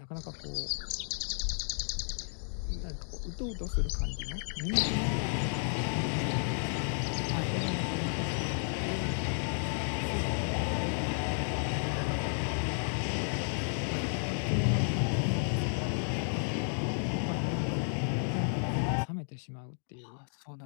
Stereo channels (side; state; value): right; silent; digital silence